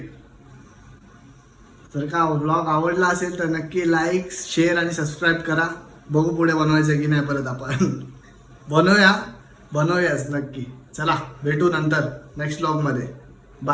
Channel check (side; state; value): both; identical; correlation 1.00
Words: जर का व्लॉग आवडला असेल तर नक्की लाईक, शेअर आणि सबस्क्राईब करा. बघू पुढे बनवायचं की नाही परत आपण. बनवूयाच नक्की. चला भेटू नंतर नेक्स्ट व्लॉगमध्ये.